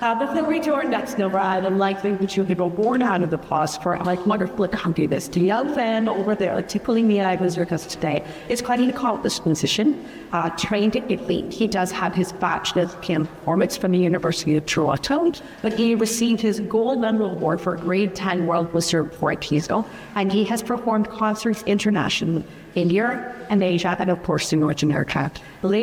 Before we do our next number, I would like to invite you to go born out of the pause for like wonderful accompanist. The young fan over there, tickling the eyes with us today, is quite an accomplished musician, trained in Italy. He does have his bachelor's in performance from the University of Toronto, but he received his gold medal award for grade 10 World Wizard Portizo, and he has performed concerts internationally in Europe and Asia, and of course in North America.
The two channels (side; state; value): both; identical; correlation 1.00